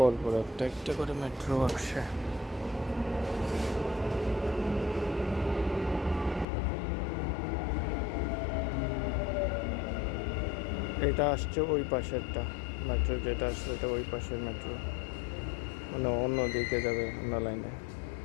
পর একটা একটা করে মেট্রো আসছে। এটা আসছে ওই পাশেরটা মেট্রো, যেটা আসছে এটা ওই পাশের মেট্রো, মানে অন্য দিকে যাবে, অন্য লাইনে।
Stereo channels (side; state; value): right; drops out; at 6.5 s